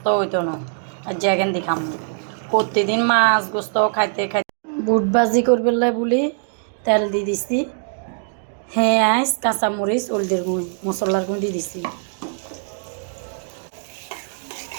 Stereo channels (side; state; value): left; silent; 64 dB below the other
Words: হইতো না আজ যে এখান দেখাম প্রতিদিন মাছ গোস্ত খাইতে খাইতে বুট ভাজি করবে বলি তেল দিয়ে দিছি পেঁয়াজ কাঁচামরিচ হলদের গুঁড়ো মশলার গুঁড়ো দিয়ে দিছি